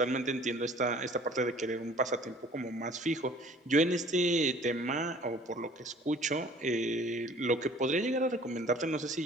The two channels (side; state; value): both; normal; correlation 0.51